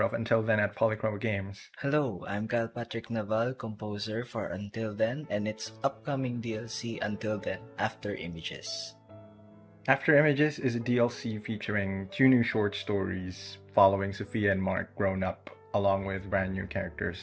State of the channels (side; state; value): both; identical; correlation 1.00